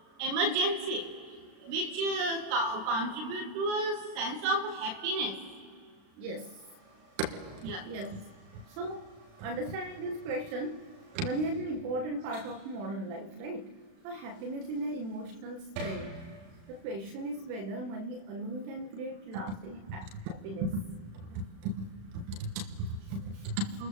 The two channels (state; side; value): late; left; 36 ms